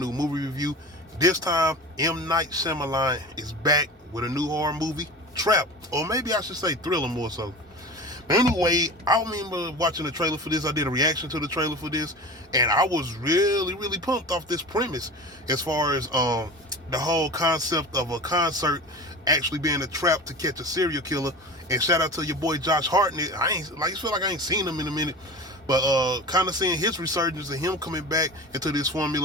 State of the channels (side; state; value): both; normal; correlation 0.33